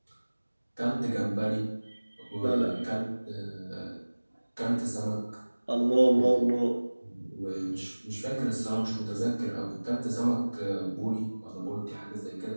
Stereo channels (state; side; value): inverted; both; correlation -1.00